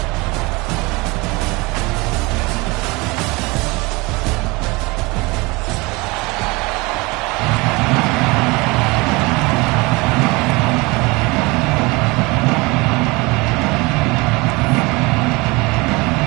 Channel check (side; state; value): left; quieter; 24.7 dB